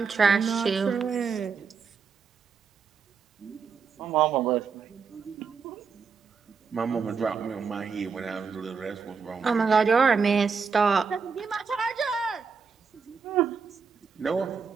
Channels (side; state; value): left; quieter; 5.6 dB